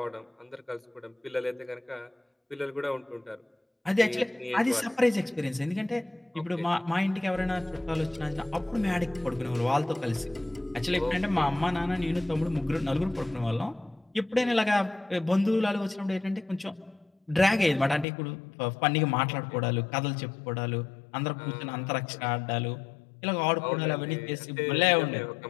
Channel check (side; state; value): right; drops out; at 18.1 s